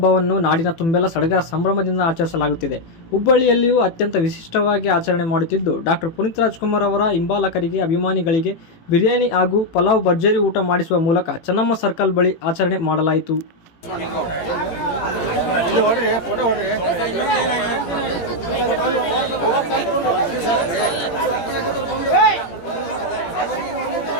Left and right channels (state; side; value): late; right; 18 ms